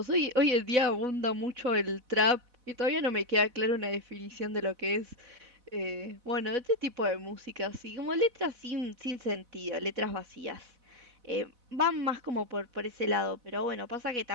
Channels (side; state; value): left; late; 4.0 ms